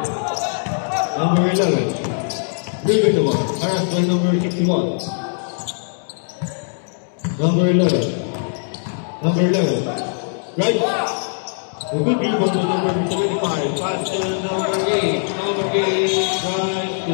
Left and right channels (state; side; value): silent; right; 65 dB below the other